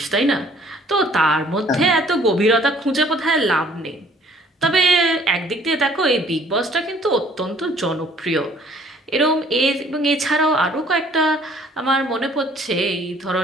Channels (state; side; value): normal; both; correlation 0.58